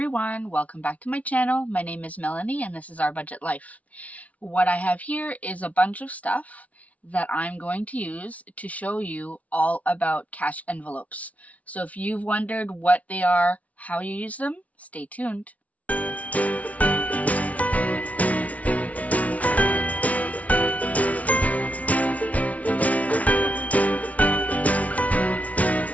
welcome back to my channel. My name is Melanie and this is Our Budget Life. What I have here is a bunch of stuff that I'm going to use to show you all about cash envelopes. So if you've wondered what they are, how you use them, stay tuned.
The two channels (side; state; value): right; late; 0.068 ms